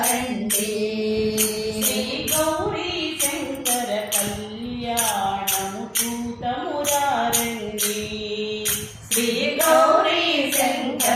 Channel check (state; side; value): identical; both; correlation 1.00